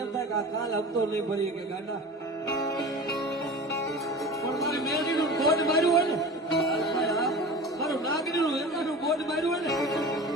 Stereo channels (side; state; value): both; normal; correlation 0.35